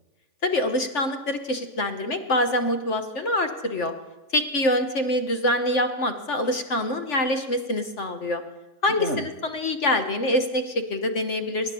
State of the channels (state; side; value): late; right; 3.5 ms